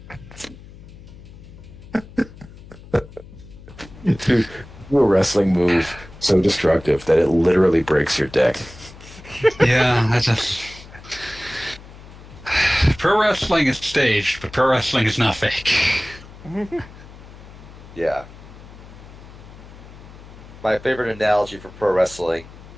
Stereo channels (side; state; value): left; noise; hum, 18 dB below the sound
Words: Dude, do a wrestling move so destructive that it literally breaks your dick. Yeah, I just. Pro wrestling is staged, but pro wrestling is not fake. Yeah. My favorite analogy for pro wrestling